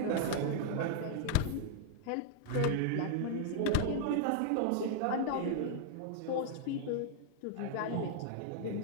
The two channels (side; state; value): both; different; correlation -0.01